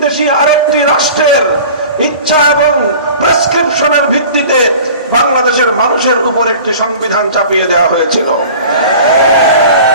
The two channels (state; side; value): inverted; both; correlation -0.42